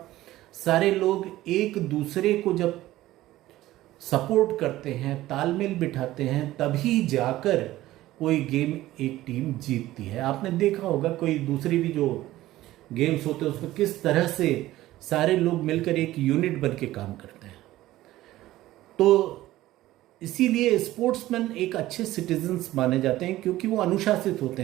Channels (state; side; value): quieter; left; 15.8 dB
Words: सारे लोग एक दूसरे को जब सपोर्ट करते हैं, तालमेल बिठाते हैं, तभी जाकर कोई गेम एक टीम जीतती है। आपने देखा होगा कोई दूसरी भी जो गेम्स होते हैं उसमें किस तरह से सारे लोग मिलकर एक यूनिट बन के काम करते हैं। तो इसीलिए स्पोर्ट्समैन एक अच्छे सिटीजन्स माने जाते हैं क्योंकि वो अनुशासित होते